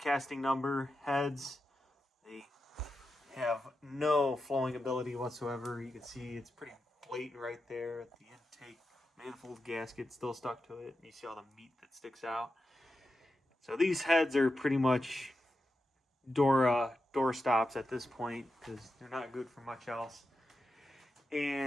number heads. They have no flowing ability whatsoever. You can see it's pretty blatant right there at the intake manifold gasket still stuck to it. You see all the meat that sticks out. So these heads are pretty much door stops at this point because they're not good for much else.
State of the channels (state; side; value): normal; both; correlation 0.89